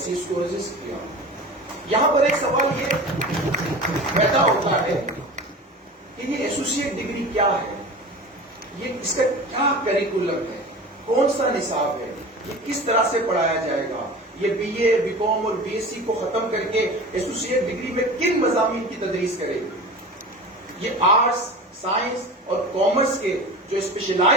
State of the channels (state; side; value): normal; both; correlation 0.34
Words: کو رجسٹ کیا. یہاں پر ایک سوال یہ پیدا ہوتا ہے کہ یہ ایسوسیٹ ڈگری کیا ہے, یہ اس کا کیا کریکولم ہے, کون سا نصاب ہے, یہ کس طرح سے پڑھایا جائے گا, یہ BA, BCom اور BSc کو ختم کر کے ایسوسیٹ ڈگری میں کن مضامین کی تدریس کرے گی. یہ آرٹس, سائنس اور کامرس کے جو